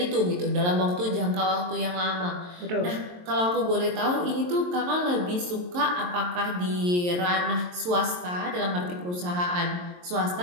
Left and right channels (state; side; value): late; left; 23 ms